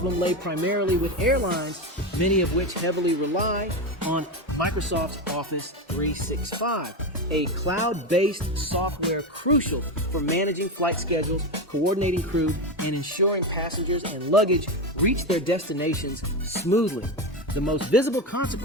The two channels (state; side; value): normal; both; correlation 0.16